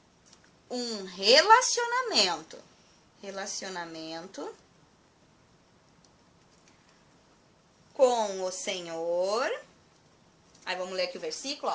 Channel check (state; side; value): identical; both; correlation 1.00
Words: um relacionamento com o Senhor, aí vamos ler aqui o versículo,